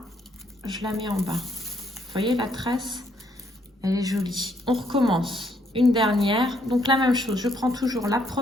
je la mets en bas. Vous voyez la tresse, elle est jolie. On recommence. Une dernière, donc la même chose. Je prends toujours la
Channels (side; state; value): both; normal; correlation 0.70